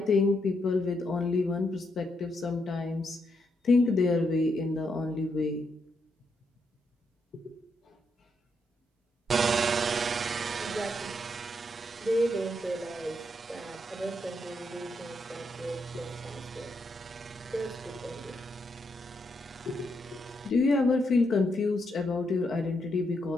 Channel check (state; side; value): normal; both; correlation 0.79